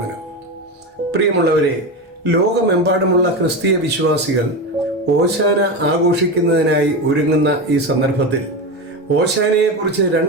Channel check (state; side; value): normal; both; correlation 0.18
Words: പ്രിയമുള്ളവരെ, ലോകമെമ്പാടുമുള്ള ക്രിസ്തീയ വിശ്വാസികൾ ഓശാന ആഘോഷിക്കുന്നതിനായി ഒരുങ്ങുന്ന ഈ സന്ദർഭത്തിൽ ഓശാനയെക്കുറിച്ച്